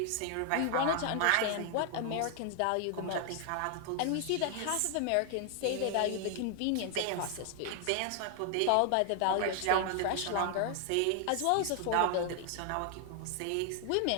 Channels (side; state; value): both; different; correlation 0.00